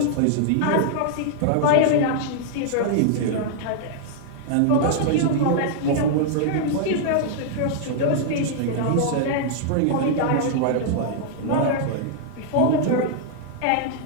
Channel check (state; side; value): different; both; correlation -0.01